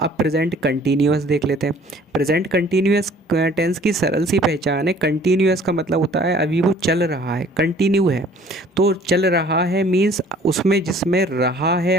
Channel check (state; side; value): normal; both; correlation 0.54